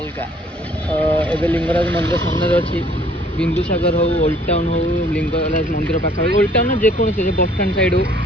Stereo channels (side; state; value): both; normal; correlation 0.58